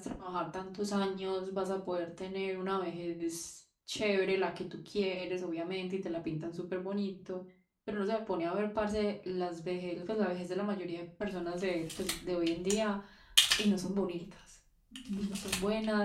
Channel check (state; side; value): identical; both; correlation 1.00